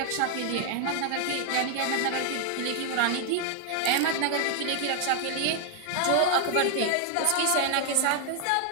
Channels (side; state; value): both; different; correlation 0.00